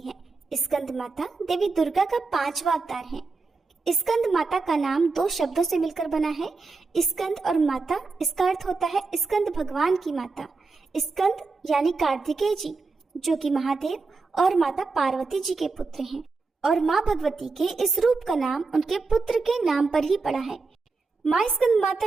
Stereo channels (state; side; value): quieter; left; 4.1 dB